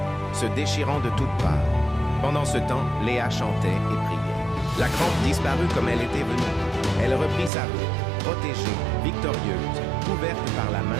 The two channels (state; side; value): drops out; left; at 7.5 s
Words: se déchirant de toutes parts. Pendant ce temps, Léa chantait et priait. La crampe disparut comme elle était venue. Elle reprit sa route, protégée, victorieuse, couverte par la